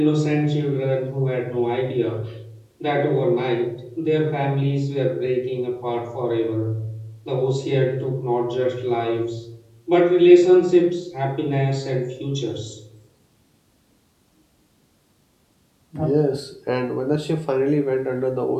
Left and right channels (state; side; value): identical; both; correlation 1.00